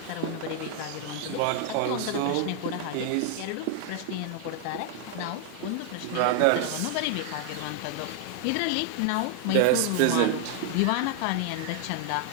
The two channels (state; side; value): different; both; correlation 0.00